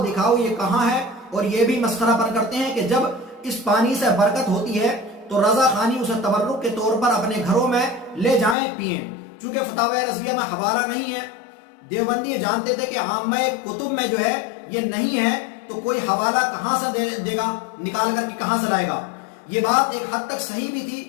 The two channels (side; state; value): right; drops out; at 8.6 s